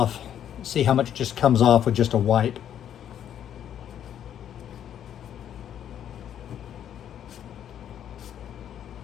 See how much just comes off with just a wipe.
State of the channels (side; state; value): right; quieter; 9.9 dB